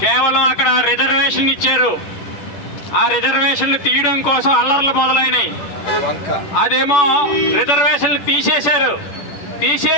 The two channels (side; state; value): right; late; 10 ms